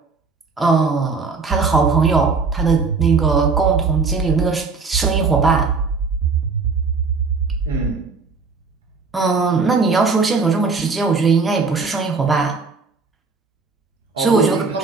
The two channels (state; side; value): quieter; left; 4.5 dB